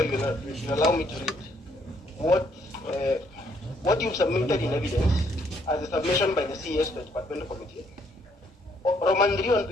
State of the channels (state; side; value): normal; both; correlation 0.69